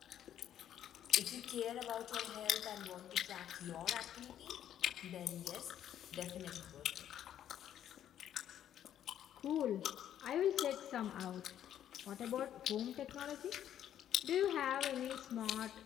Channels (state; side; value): quieter; right; 10.6 dB